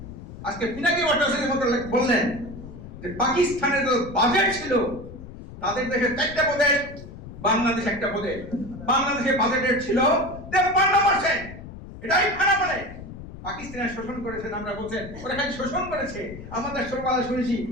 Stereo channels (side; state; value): left; noise; rumble, 13 dB below the sound